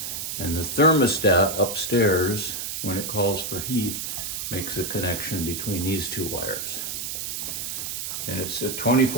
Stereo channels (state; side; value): noise; right; hiss, 4 dB below the sound